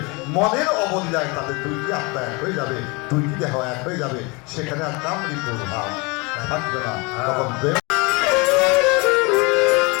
মনের অবলীলায় তাদের দুইটি আত্মা এক হয়ে যাবে, দুইটি দেহ এক হয়ে যাবে, সেখানে আর কামড়ি প্রভাব থাকবে না। তখন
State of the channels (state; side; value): quieter; right; 27.8 dB